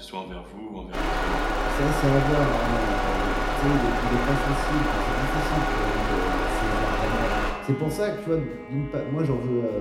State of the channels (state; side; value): identical; both; correlation 1.00